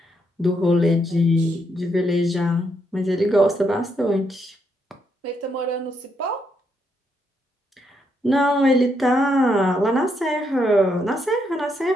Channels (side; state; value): both; normal; correlation 0.77